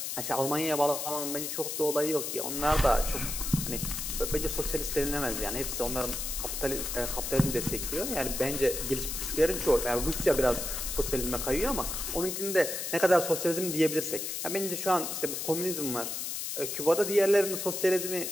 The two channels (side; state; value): left; noise; hiss, 4 dB below the sound